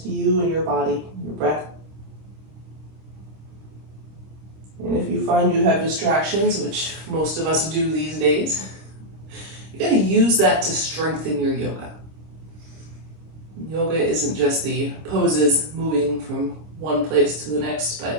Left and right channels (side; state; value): left; late; 26 ms